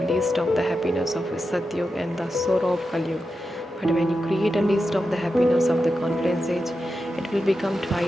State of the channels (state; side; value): normal; both; correlation 0.90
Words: list of the happiness of Satyug and the sorrow of Kalyug. But when you create a list of the happiness of the confluence age, it will become